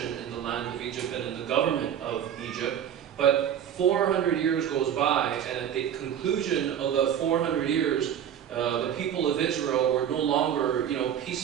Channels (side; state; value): left; quieter; 9.4 dB